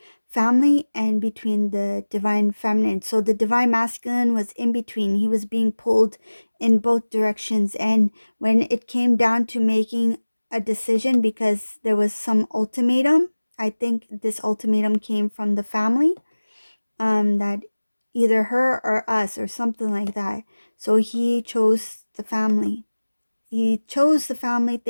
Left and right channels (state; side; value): inverted; both; correlation -1.00